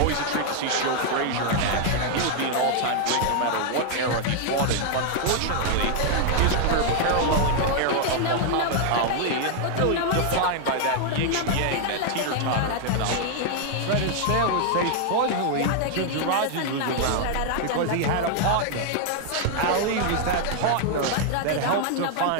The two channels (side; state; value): both; different; correlation 0.00